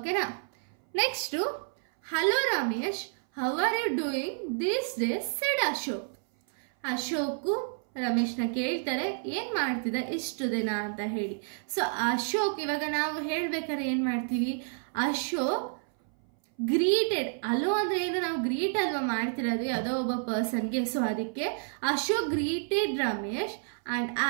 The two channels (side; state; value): left; silent; 58 dB below the other